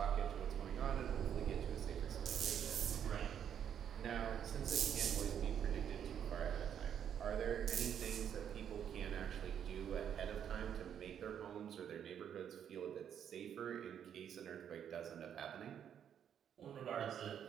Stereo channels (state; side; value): quieter; left; 8.9 dB